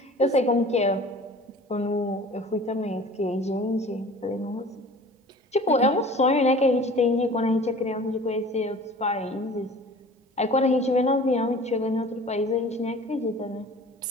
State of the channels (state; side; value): normal; both; correlation 0.44